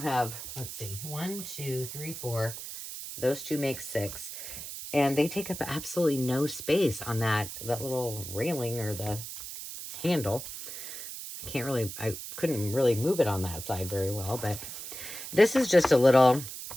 have, let's see, 1, 2, 3, 4. Those 2 make 6. And they take up absolutely no space on that little railing or the handle. I couldn't really move it on that side very well. But this is just a little,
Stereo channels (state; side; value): noise; right; hiss, 9 dB below the sound